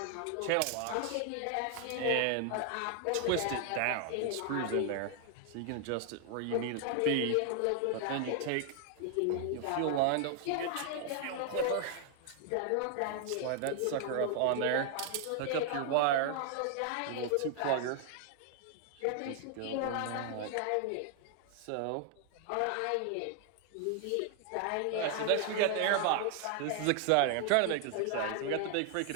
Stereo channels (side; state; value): both; different; correlation 0.00